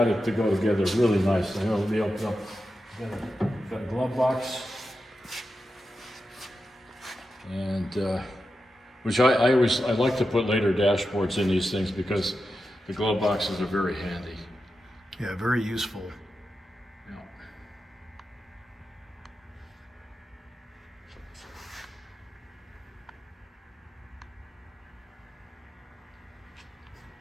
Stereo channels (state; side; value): normal; both; correlation 0.90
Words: it to go together really nice. I know it'll be opened up. Got a glove box. And, which I like to put later dashboards in these things because the glove boxes are very handy. Yeah, very useful.